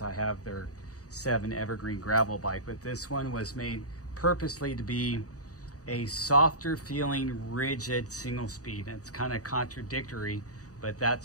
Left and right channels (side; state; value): right; late; 0.66 ms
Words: have their 7 evergreen gravel bike, but this one was made purposely to be a softer feeling rigid single speed. It's kind of contradictory, but